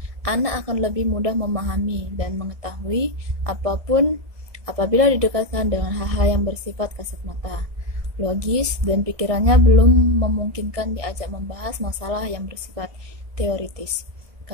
anak akan lebih mudah memahami dan mengetahui apapun apabila didekatkan dengan hal-hal yang bersifat kasat mata, logis, dan pikirannya belum memungkinkan diajak membahas masalah yang bersifat teoritis,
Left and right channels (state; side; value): late; left; 1.7 ms